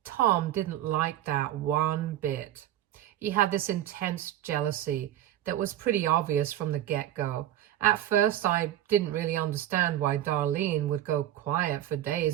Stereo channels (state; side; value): quieter; left; 12.6 dB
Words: Tom didn't like that one bit. He had this intense jealousy that was pretty obvious from the get-go. At first, I didn't really understand why Darlene would go quiet for